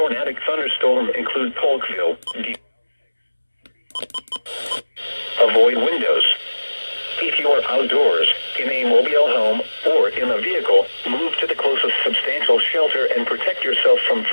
thunderstorm include Polkville. Avoid windows. If you are outdoors, in a mobile home, or in a vehicle, move to the closest substantial shelter and protect yourself from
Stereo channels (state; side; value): inverted; both; correlation -1.00